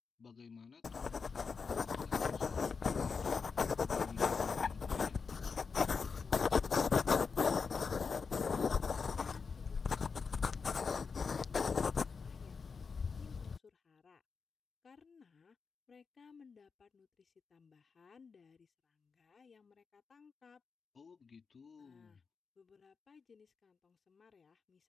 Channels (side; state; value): right; quieter; 5.2 dB